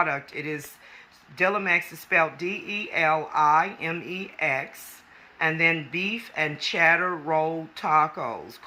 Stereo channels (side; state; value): both; identical; correlation 1.00